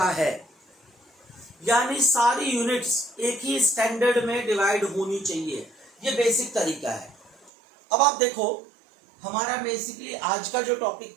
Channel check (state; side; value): drops out; left; at 7.5 s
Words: है। यानी सारी यूनिट्स एक ही स्टैंडर्ड में डिवाइड होनी चाहिए, ये बेसिक तरीका है। अब आप देखो, हमारा बेसिकली आज का जो टॉपिक